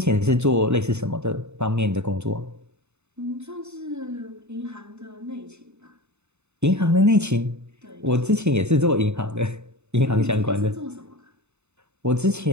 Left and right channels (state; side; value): late; left; 0.82 ms